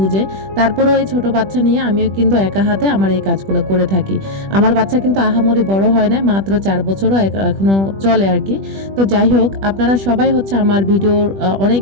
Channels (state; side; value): late; left; 20 ms